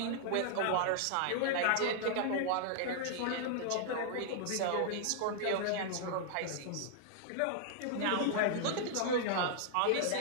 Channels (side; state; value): both; different; correlation -0.01